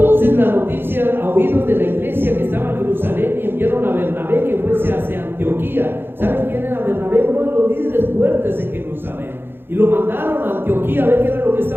la noticia a oídos de la iglesia que estaba en Jerusalén, y enviaron a Bernabé que fuese hacia Antioquía. ¿Saben quién era Bernabé? Uno de los líderes fuertes en Jerusalén. Y lo mandaron a Antioquía a ver qué era lo que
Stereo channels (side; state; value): left; late; 0.10 ms